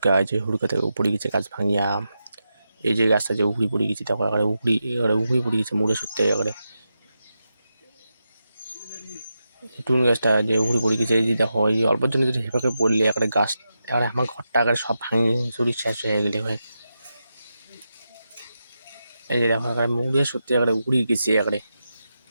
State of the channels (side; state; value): both; inverted; correlation -0.88